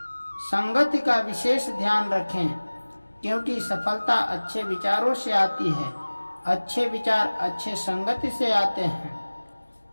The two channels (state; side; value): inverted; both; correlation -1.00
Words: संगति का विशेष ध्यान रखें, क्योंकि सफलता अच्छे विचारों से आती है। अच्छे विचार अच्छे संगति से आते हैं।